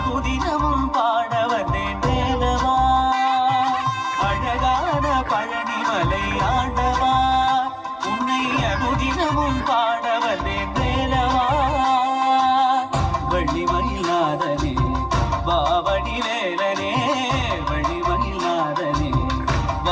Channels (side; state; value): both; identical; correlation 1.00